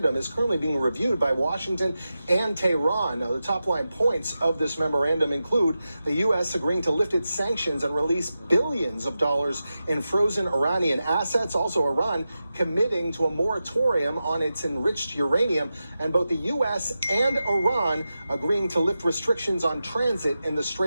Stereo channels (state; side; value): inverted; both; correlation -0.91